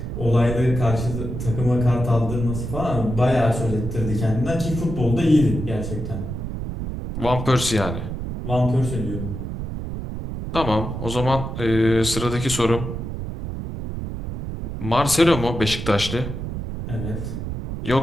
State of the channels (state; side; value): noise; right; rumble, 5 dB below the sound